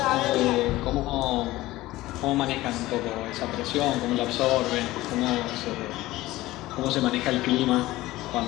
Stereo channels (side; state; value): right; quieter; 17.6 dB